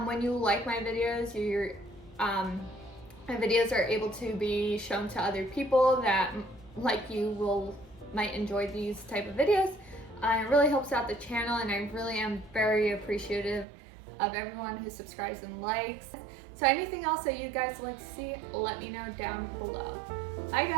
When you like my videos, my videos are able to be shown to other people that, like you, might enjoy these type of videos. It really helps out the channel, and I really am very appreciative of everyone who subscribes and likes. So anything else that you guys like to see, let me know down below. Bye,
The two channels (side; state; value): left; drops out; at 13.7 s